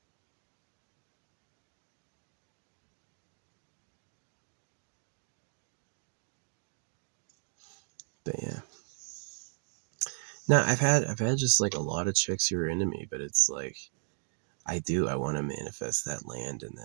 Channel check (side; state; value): left; silent; digital silence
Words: but yeah. No, I've had just like a lot of chicks who are into me, but it's like I want to manifest that land and